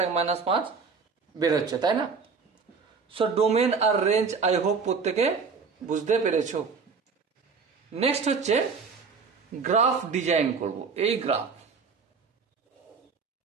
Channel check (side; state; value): left; quieter; 5.2 dB